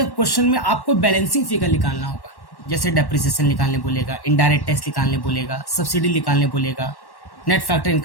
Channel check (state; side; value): late; right; 1.1 ms